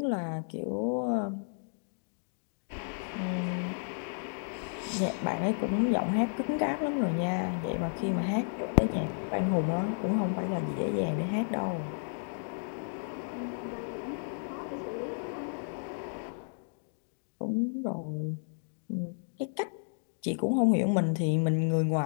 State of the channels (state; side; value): silent; right; digital silence